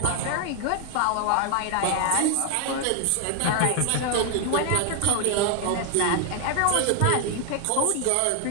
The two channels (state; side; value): different; both; correlation 0.00